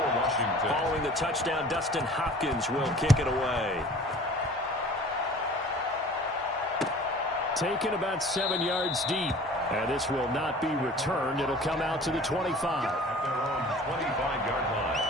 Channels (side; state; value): both; normal; correlation 0.46